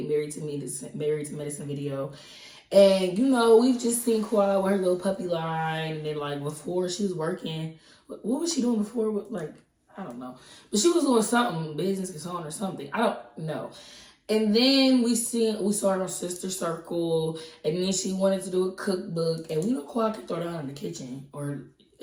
to Medicine video, and we've just seen Quad with her little puppy line, and then like before she was working, what was she doing before? Like I don't know, but she was doing something, business consultant or something. I don't know. And then we saw her on Sister Circle, and then she wanted to do a cookbook, and we know Quad can throw down in the kitchen, or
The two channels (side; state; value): both; identical; correlation 1.00